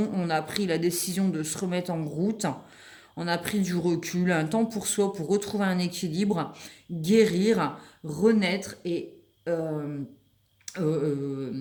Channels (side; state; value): both; identical; correlation 1.00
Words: On a pris la décision de se remettre en route. On a pris du recul, un temps pour soi, pour retrouver un équilibre, guérir, renaître et se